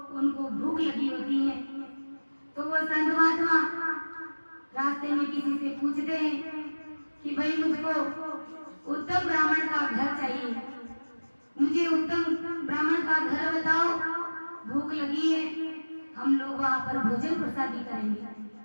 उनको भूख लगी होती है, तो वो संत महात्मा रास्ते में किसी से पूछते हैं कि भाई मुझको उत्तम ब्राह्मण का घर चाहिए, मुझे उत्तम ब्राह्मण का घर बताओ, भूख लगी है, हम लोग वहां पर भोजन प्रसादी करेंगे।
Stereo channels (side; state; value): both; inverted; correlation -1.00